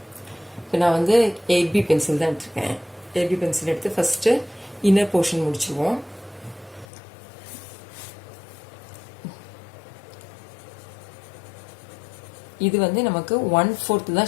இப்போ நான் வந்து 8B பென்சில் தான் எடுத்துருக்கேன். 8B பென்சில் எடுத்து ஃபஸ்ட்டு இன்னர் போர்ஷன் முடிச்சுருவோம். இது வந்து நமக்கு 1/4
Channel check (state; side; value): drops out; right; at 6.9 s